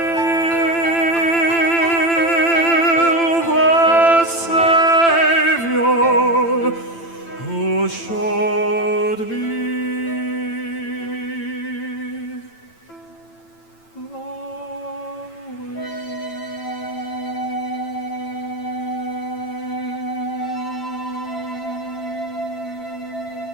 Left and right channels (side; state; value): right; late; 9.0 ms